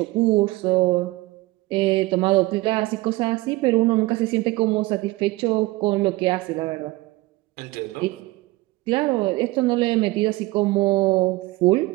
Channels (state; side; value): quieter; left; 20.4 dB